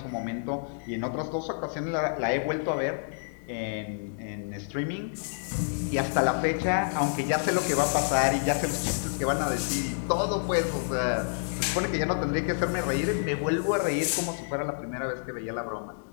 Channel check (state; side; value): silent; right; digital silence